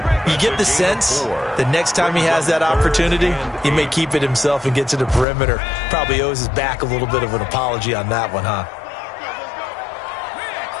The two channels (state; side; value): drops out; right; at 5.2 s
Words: You get the sense the next time he has that opportunity, he may keep it himself and get to the perimeter. Probably owes his back a little bit of an apology on that one, huh?